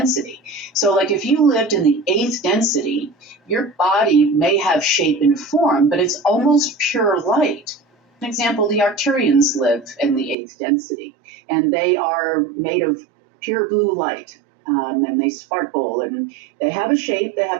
So like if you lived in the 8th density, your body may have shape and form, but it's almost pure light. For example, the Arcturians live in the 8th density, and they are made of pure blue light, and they sparkle, and they have a shape, they have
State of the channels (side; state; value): left; drops out; at 10.4 s